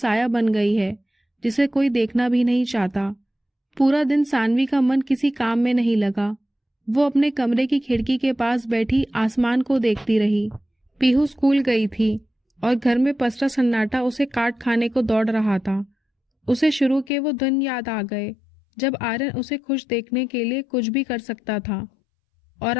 बन गई है जिसे कोई देखना भी नहीं चाहता। पूरा दिन सानवी का मन किसी काम में नहीं लगा। वो अपने कमरे की खिड़की के पास बैठी आसमान को देखती रही। पीहू स्कूल गई थी और घर में पसरा सन्नाटा उसे काट खाने को दौड़ रहा था। उसे शुरू के वो दिन याद आ गए जब आर्यन उसे खुश देखने के लिए कुछ भी कर सकता था, और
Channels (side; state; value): right; drops out; at 17.1 s